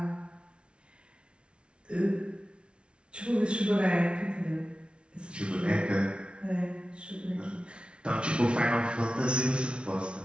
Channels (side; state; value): left; late; 0.058 ms